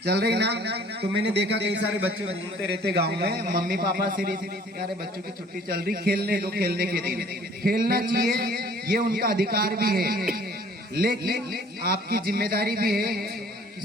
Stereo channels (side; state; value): both; normal; correlation 0.54